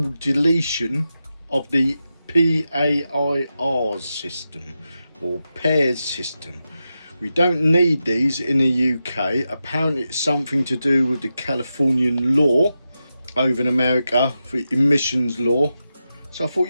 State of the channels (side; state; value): both; inverted; correlation -0.90